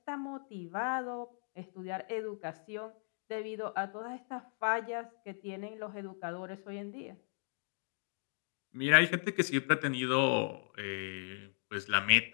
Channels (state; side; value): silent; right; digital silence